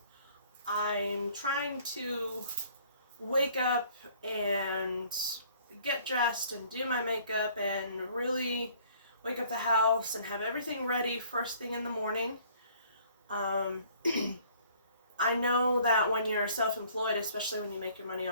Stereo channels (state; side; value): inverted; both; correlation -0.57